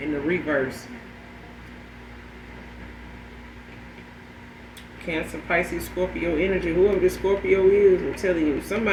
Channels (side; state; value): both; identical; correlation 1.00